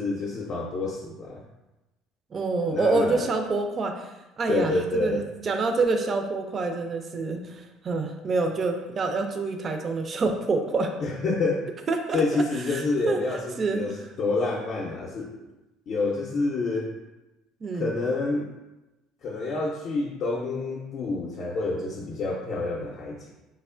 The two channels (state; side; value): normal; both; correlation 0.70